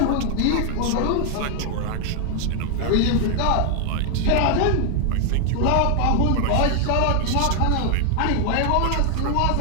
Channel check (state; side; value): different; both; correlation 0.00